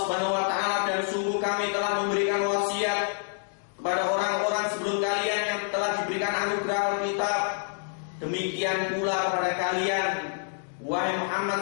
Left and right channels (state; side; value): silent; right; digital silence